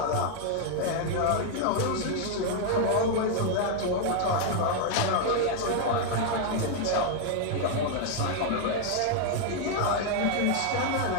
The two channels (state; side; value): different; both; correlation 0.00